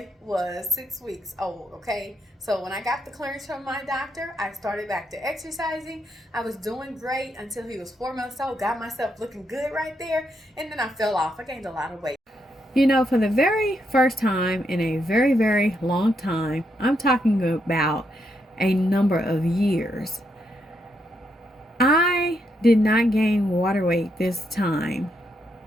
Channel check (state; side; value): normal; both; correlation 0.79